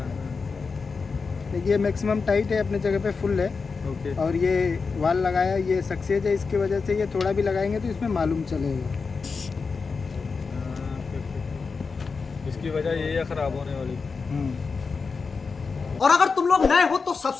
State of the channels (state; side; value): quieter; right; 4.8 dB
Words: ये मैक्सिमम टाइट है, अपने जगह पे फुल है। ओके। और ये वाल लगाया, ये सक्सेस है, इसकी वजह से ये थोड़ा भी लगाएंगे तो इसमें मालूम चलेगा। इसकी वजह यही है खराब होने वाली। और अगर तुम लोग नए हो तो